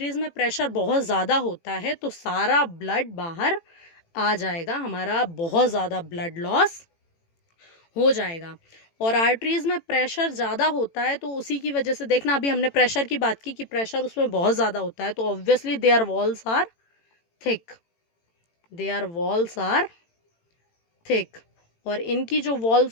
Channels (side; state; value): right; late; 18 ms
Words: में प्रेशर बहुत ज़्यादा होता है तो सारा ब्लड बाहर आ जाएगा, हमारा बहुत ज़्यादा ब्लड लॉस हो जाएगा। और आर्टरीज में प्रेशर ज़्यादा होता है तो उसी की वजह से देखना, अभी हमने प्रेशर की बात की कि प्रेशर उसमें बहुत ज़्यादा होता है, तो obviously their walls are thick, their walls are thick. और इनकी जो